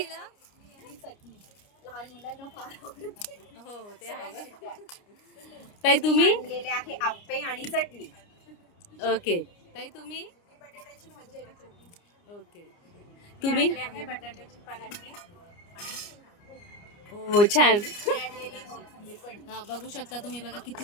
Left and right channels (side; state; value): right; late; 29 ms